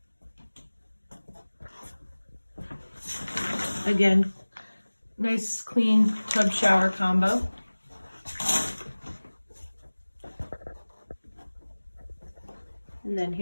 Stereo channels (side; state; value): both; inverted; correlation -1.00